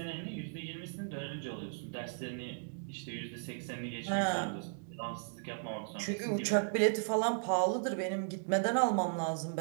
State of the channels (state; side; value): silent; left; digital silence